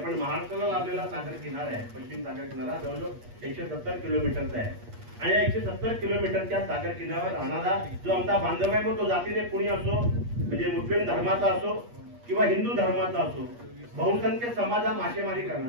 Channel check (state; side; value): late; left; 8.4 ms